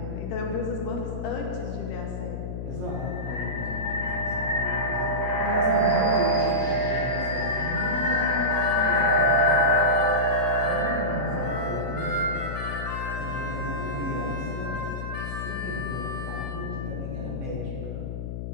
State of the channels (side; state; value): left; noise; hum, 5 dB below the sound